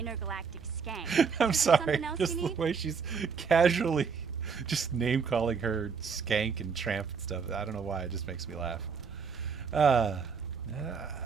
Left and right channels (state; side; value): quieter; left; 5.8 dB